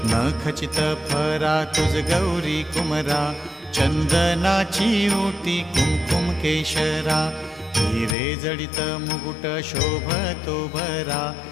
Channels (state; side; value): drops out; right; at 8.2 s